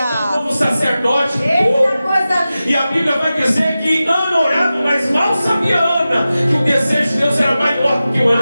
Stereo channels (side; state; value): both; inverted; correlation -0.94